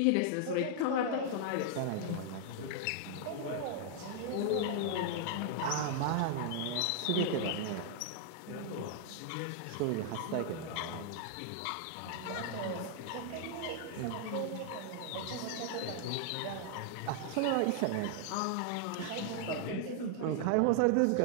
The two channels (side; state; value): both; different; correlation 0.00